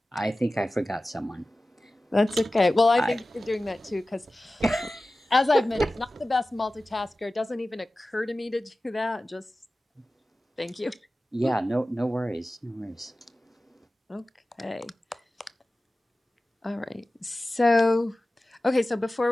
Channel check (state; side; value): normal; both; correlation 0.96